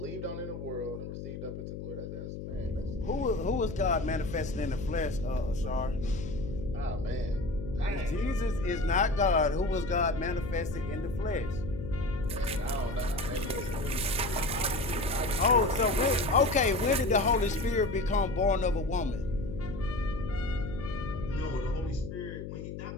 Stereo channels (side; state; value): left; noise; hum, 8 dB below the sound